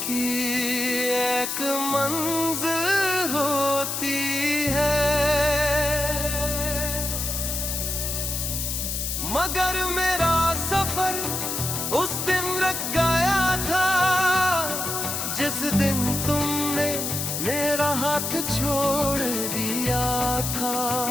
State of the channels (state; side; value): noise; left; hiss, 2 dB below the sound